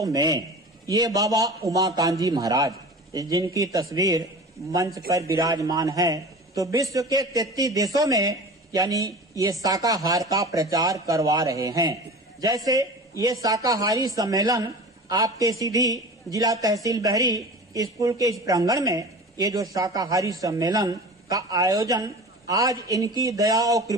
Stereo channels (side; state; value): both; normal; correlation 0.36